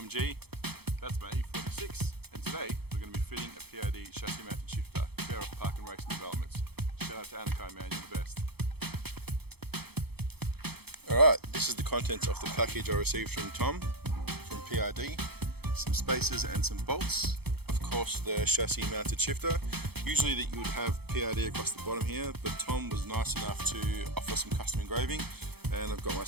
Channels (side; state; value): left; late; 0.97 ms